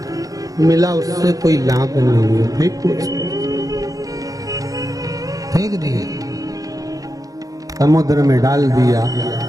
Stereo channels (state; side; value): late; left; 0.17 ms